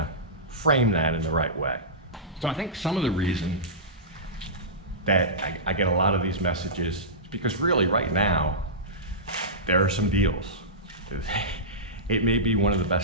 frame that in the right way. So I think some of the reason that I get a lot of these messages is because really right now, there are some deals. It may be one of the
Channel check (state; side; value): normal; both; correlation -0.17